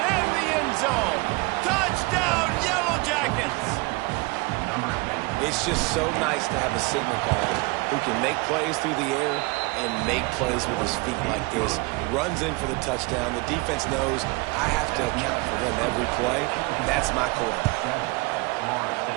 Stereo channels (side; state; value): left; quieter; 25.8 dB